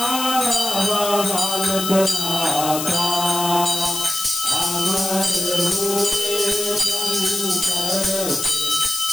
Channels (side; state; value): left; noise; hiss, 4 dB below the sound